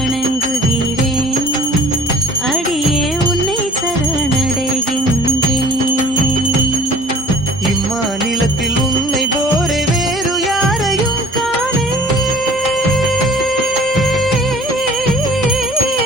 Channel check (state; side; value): normal; both; correlation 0.50